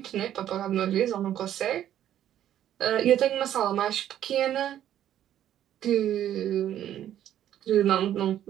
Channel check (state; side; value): quieter; left; 11.3 dB